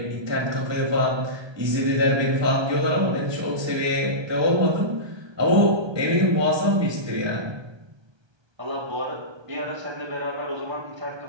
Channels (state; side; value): late; left; 1.3 ms